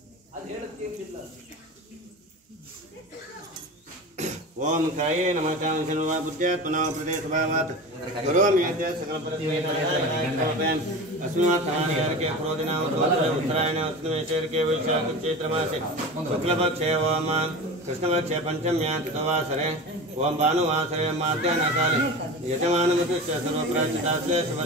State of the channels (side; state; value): both; normal; correlation 0.30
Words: ಓಂ ಕಾಯೇ ನಮಃ ಕಾಮಶರ್ವಾ ಬುದ್ಧ್ಯಾತ್ಮನಾ ಪ್ರದೇಶಭಾವಾತ್ ಕರೋಮಿ ಯದ್ಯ ಸಕಲ ಪರಿಸ್ಥಿತಿನ अस्मात् के क्रोधिना उत्तरायण उत्तमेश्वरके वैशाख चैत्रमासे शुक्लपक्षे ओम कृष्णपक्षे पंचम्यां तिथवासरे ओम भानुवासरे माध्याह्नकाले यजमानमुद्दिश्य सर्वप्राचितास्ते